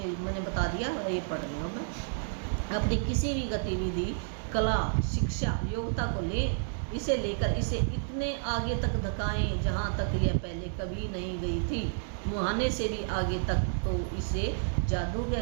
मैंने बता दिया, ये पढ़ रही हूँ मैं। अपनी किसी भी गतिविधि, कला, शिक्षा, योग्यता को लें, इसे लेकर इसे इतने आगे तक धकाएं जहाँ तक यह पहले कभी नहीं गई थी, मुहाने से भी आगे तक, तो इसे जादू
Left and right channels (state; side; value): silent; left; digital silence